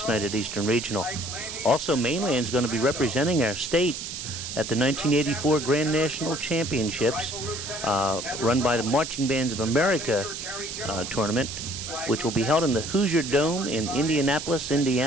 night at Eastern Regional. Also, Mainland's going to be representing our state at the 1984 Grand National Championships, run by the Marching Bands of America tournament, which will be held in the Hoosier Dome in Indianapolis,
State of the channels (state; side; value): noise; right; hiss, 7 dB below the sound